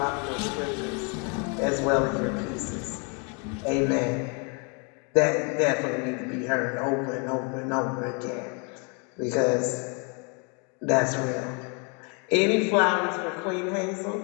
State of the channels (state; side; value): quieter; right; 35.1 dB